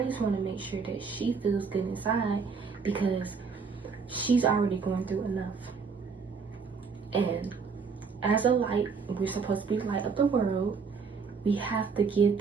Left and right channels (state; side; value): quieter; left; 5.3 dB